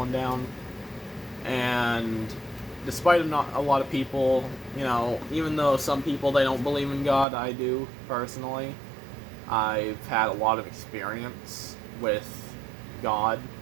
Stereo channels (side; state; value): left; drops out; at 7.2 s